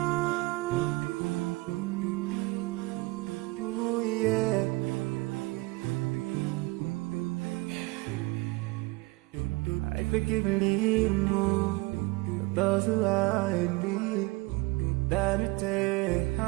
forgive and leave those who are in need. That you take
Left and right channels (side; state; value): left; quieter; 23.4 dB